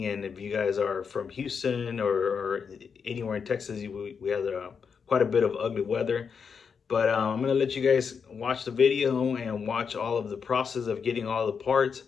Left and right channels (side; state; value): right; quieter; 6.2 dB